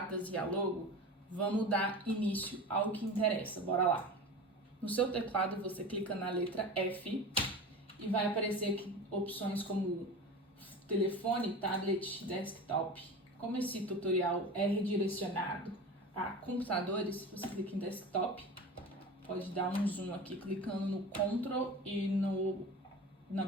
e a logo, vamos dar início ao que interessa. Bora lá! No seu teclado você clica na letra F e vai aparecer aqui opções como telefone, tablet, desktop. Como esse tutorial é redirecionado a computadores, você clica em desktop, pode dar um zoom aqui clicando no Ctrl e na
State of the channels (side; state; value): both; normal; correlation 0.32